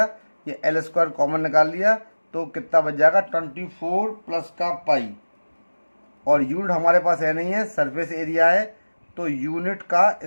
ये L² कॉमन निकाल लिया, तो कितना बच जाएगा 24 प्लस का पाई, और यूनिट हमारे पास है नहीं है, सरफेस एरिया है, तो यूनिट का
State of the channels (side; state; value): both; inverted; correlation -1.00